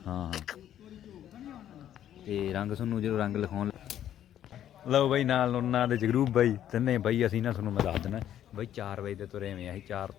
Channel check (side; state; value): right; quieter; 11.0 dB